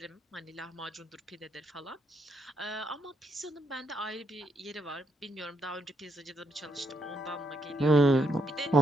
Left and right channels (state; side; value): normal; both; correlation 0.77